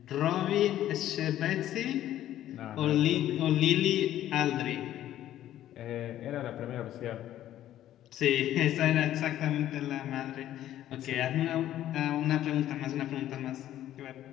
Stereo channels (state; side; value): quieter; right; 12.5 dB